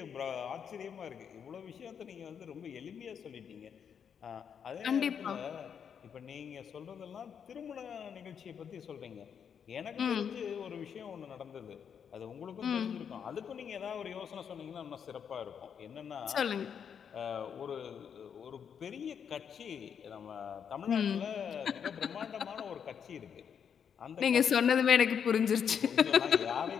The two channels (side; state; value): right; quieter; 7.6 dB